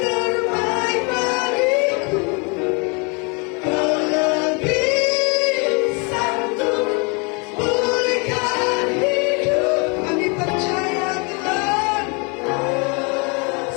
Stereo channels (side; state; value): right; quieter; 32.3 dB